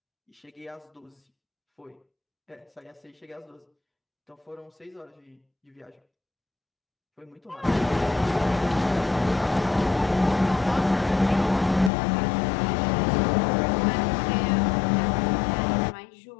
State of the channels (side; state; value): right; drops out; at 11.9 s